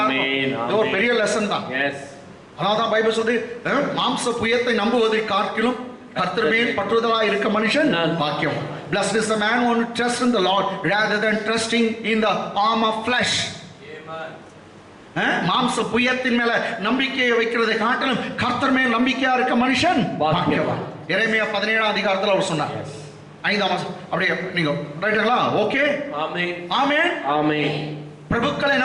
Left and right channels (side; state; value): both; identical; correlation 1.00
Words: இது ஒரு பெரிய லெசன் தான். அதான் பைபிள் சொல்லுது, மாம்ச புயத்தை நம்புவதை காட்டிலும் கர்த்தர் மேல் பற்றுதலா இருக்க மனுஷன் பாக்கியம். Blessed is the man who trusts in the Lord rather than trusting in the arm of flesh. மாம்ச புயத்தின் மேல நம்பிக்கையை வைக்கிறதை காட்டிலும் கர்த்தர் மேல் நம்பிக்கையா இருக்க மனுஷன் பாக்கியவான். எரேமியா 17ஆம் அதிகாரத்துல அவர் சொன்னார். 5ஆம் வசனம். அப்படியே நீங்க ரைட்டுங்களா? ஓகே. ஆமென். ஆமென். ஆமென். பிரபுக்களை